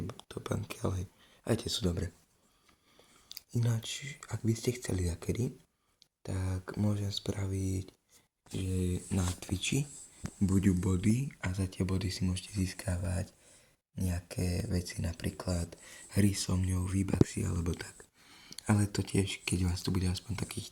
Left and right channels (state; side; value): identical; both; correlation 1.00